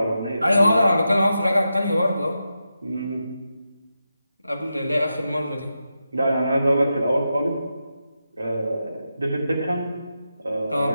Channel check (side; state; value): both; inverted; correlation -0.88